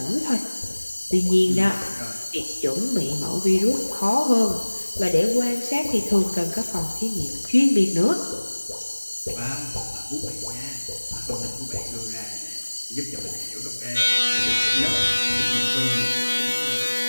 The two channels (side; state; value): both; inverted; correlation -1.00